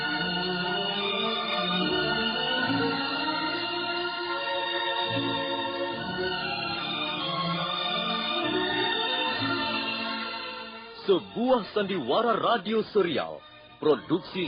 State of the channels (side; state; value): both; identical; correlation 1.00